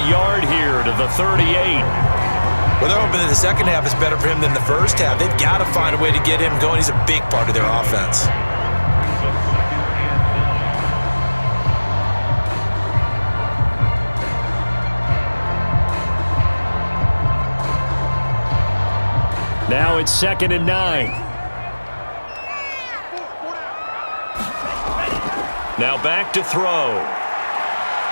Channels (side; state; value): both; inverted; correlation -1.00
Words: yard here to the 38. Well, they're hoping that the second half is better for him than the first half. They've got to find a way to get him going. He's a big part of their offense. Now it's 2nd and 9. Now back to throw.